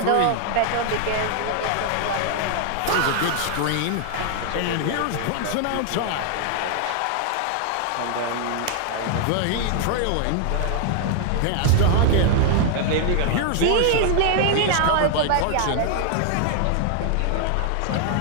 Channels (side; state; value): both; different; correlation 0.00